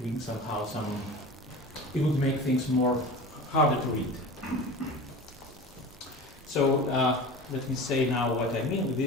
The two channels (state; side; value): normal; both; correlation 0.34